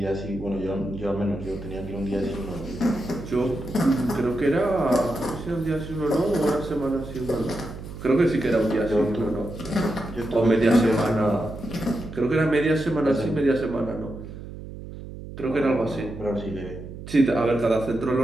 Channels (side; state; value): right; noise; hum, 12 dB below the sound